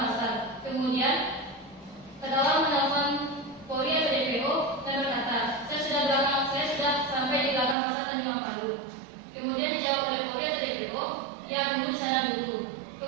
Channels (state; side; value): drops out; left; at 7.8 s